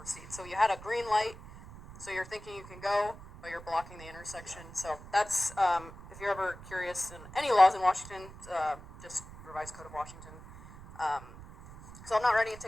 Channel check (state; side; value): noise; right; rumble, 16 dB below the sound